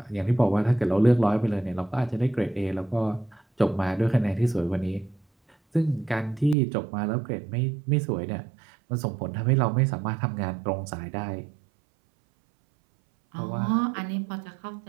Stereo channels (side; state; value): left; drops out; at 6.6 s